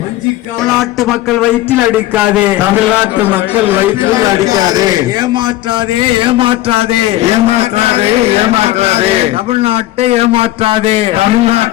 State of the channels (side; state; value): right; quieter; 15.6 dB